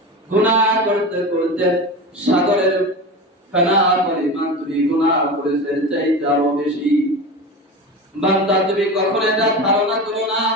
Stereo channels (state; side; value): normal; both; correlation 0.27